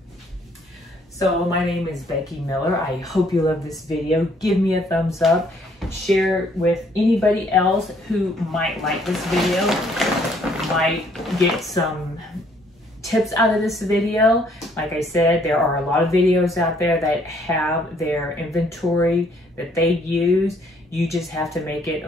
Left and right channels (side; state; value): both; normal; correlation 0.65